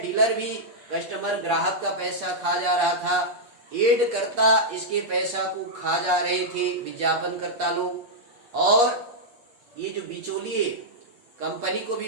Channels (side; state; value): left; late; 8.4 ms